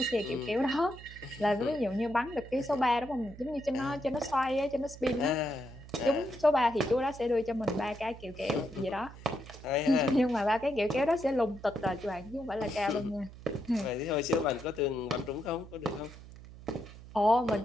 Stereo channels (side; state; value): right; noise; hum, 16 dB below the sound